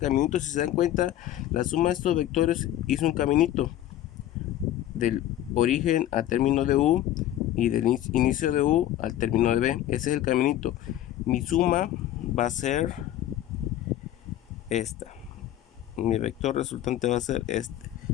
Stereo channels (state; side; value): quieter; right; 12.8 dB